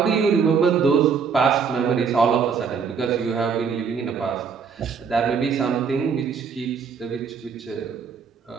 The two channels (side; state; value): left; quieter; 6.1 dB